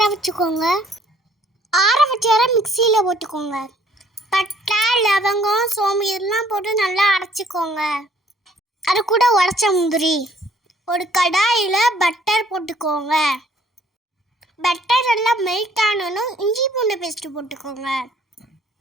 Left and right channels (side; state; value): both; normal; correlation 0.61